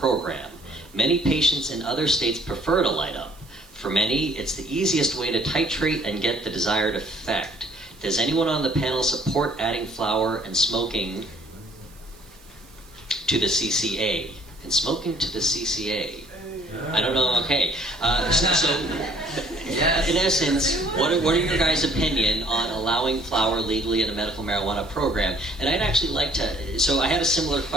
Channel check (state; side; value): noise; right; hiss, 26 dB below the sound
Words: Many patients in other states prefer to light up. For many, it's the easiest way to titrate and get the desired effect. Does anyone on the panel support adding flower and smoking to the CCA? And smoking to the CCA? I don't know. Okay. So in essence, what are your guys' opinion on allowing flower legally in a medical marijuana program? And I'd actually like to. So I had a similar